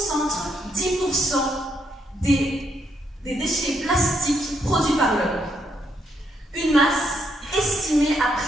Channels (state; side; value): normal; both; correlation 0.76